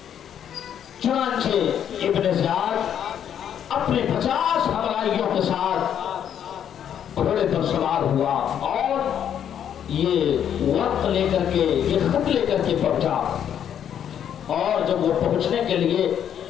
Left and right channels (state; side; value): quieter; right; 9.3 dB